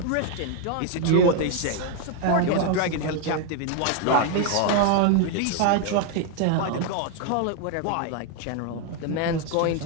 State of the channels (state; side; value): different; both; correlation 0.01